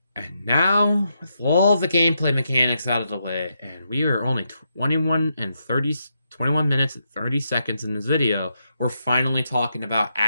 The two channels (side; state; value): both; inverted; correlation -0.82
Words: And now, with all the gameplay mechanics out of the way, and we are only 21 minutes and 30 seconds in this video, we're finally talking about